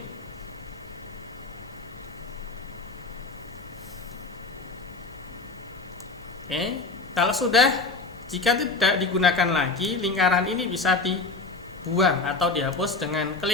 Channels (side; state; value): right; quieter; 3.7 dB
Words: Oke, kalau sudah, jika tidak digunakan lagi, lingkaran ini bisa dibuang atau dihapus dengan